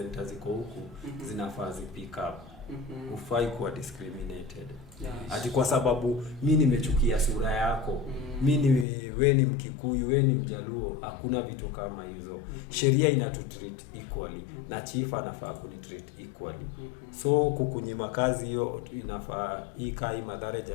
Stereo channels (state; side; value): drops out; right; at 8.8 s